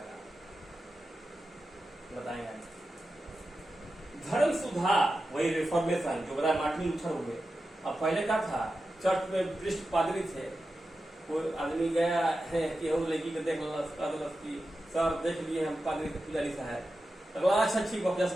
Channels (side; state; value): both; normal; correlation 0.92